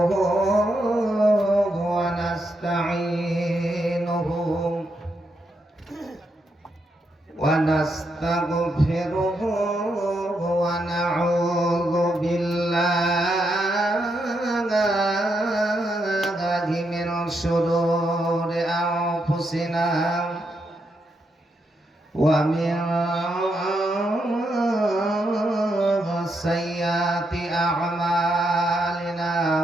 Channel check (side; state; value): both; normal; correlation 0.81